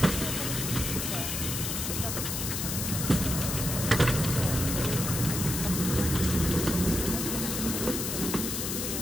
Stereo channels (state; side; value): noise; left; hiss, 2 dB below the sound